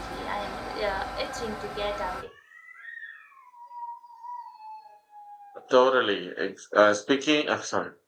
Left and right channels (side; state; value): both; identical; correlation 1.00